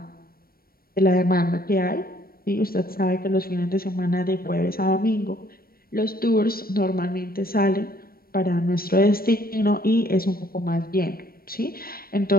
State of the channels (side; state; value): right; late; 0.43 ms